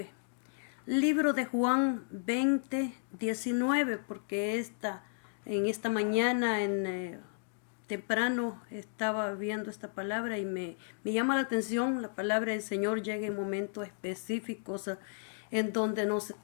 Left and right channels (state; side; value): silent; right; digital silence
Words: Libro de Juan 20, 19, porque en esta mañana temprano estaba viendo esta palabra y me llama la atención. La palabra del Señor llega en momentos específicos en donde nos